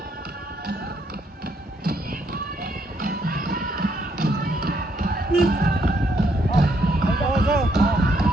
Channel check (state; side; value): normal; both; correlation 0.73